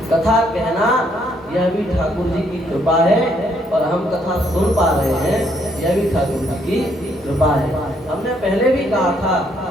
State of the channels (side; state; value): both; normal; correlation 0.70